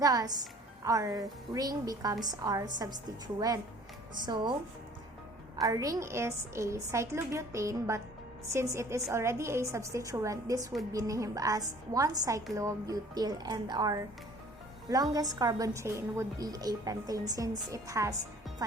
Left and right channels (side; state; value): both; normal; correlation 0.52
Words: our ring becomes our substituent. So, our ring is a cyclobutane, but since it is already a substituent, this would be named as 1-cyclobutyl, and our longest carbon chain would be a pentane since it has